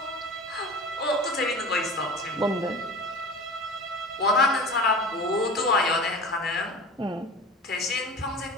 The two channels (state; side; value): normal; both; correlation 0.36